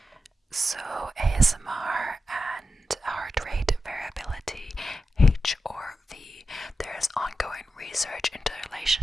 So ASMR and heart rate variability, HRV. There's ongoing research into the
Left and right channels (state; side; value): normal; both; correlation 0.90